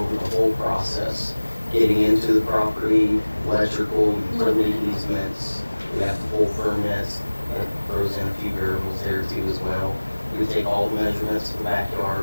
the whole process, getting into the property, electrical, utility easements. We have to pull permits. That throws in a few variables there too as well. We take all the measurements of the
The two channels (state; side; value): inverted; both; correlation -1.00